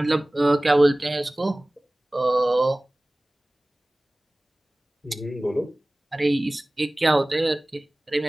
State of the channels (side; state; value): both; normal; correlation 0.98